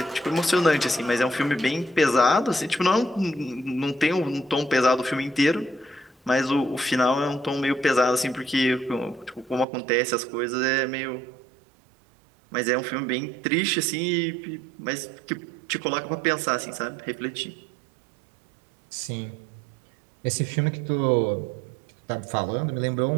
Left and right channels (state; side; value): drops out; left; at 9.7 s